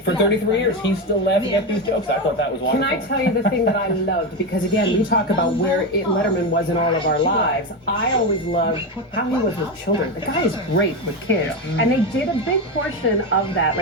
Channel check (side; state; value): both; normal; correlation 0.14